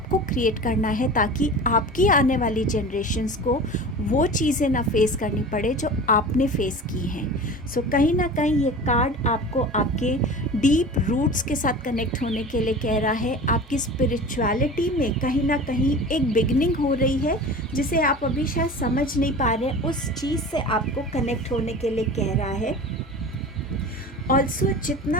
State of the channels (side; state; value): both; normal; correlation 0.36